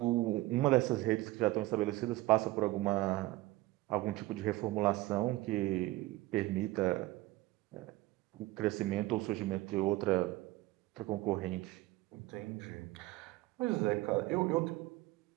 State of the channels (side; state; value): left; quieter; 18.8 dB